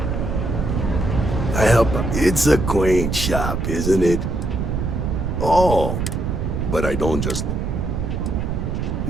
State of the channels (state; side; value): noise; right; rumble, 1 dB below the sound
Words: I help. It's a quaint shop, isn't it? Oh, but I don't just look.